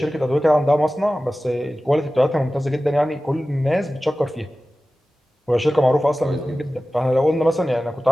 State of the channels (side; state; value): both; normal; correlation 0.96